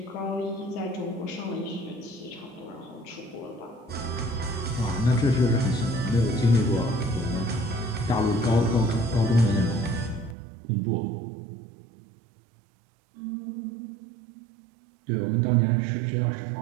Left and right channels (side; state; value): left; drops out; at 10.4 s